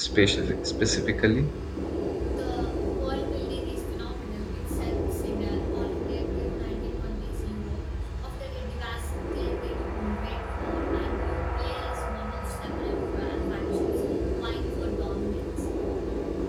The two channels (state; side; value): identical; both; correlation 1.00